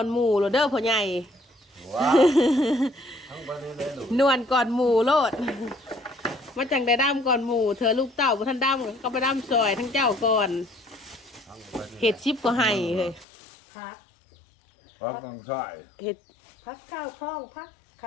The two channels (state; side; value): drops out; right; at 13.2 s